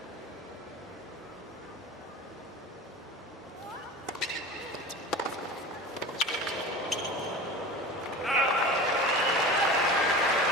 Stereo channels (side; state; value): both; normal; correlation 0.33